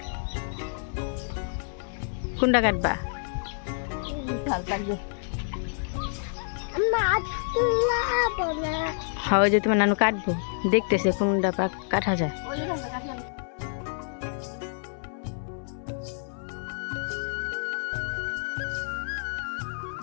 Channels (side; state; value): right; silent; 59 dB below the other